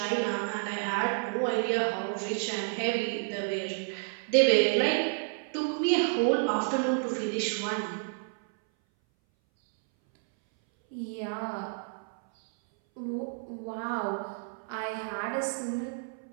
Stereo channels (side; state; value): left; silent; 58 dB below the other